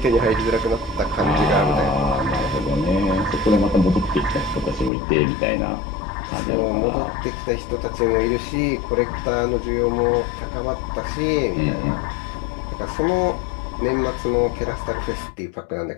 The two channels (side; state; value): right; drops out; at 4.9 s